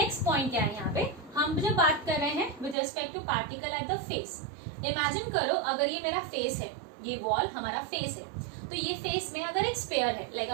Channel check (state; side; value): drops out; left; at 2.8 s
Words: पॉइंट क्या है? यहाँ पे हम जब बात कर रहे हैं with respect to particle at the face, imagine करो अगर ये मेरा फेस है, ये वॉल हमारा फेस है, तो ये फेस में अगर एक स्पेयर है, लाइक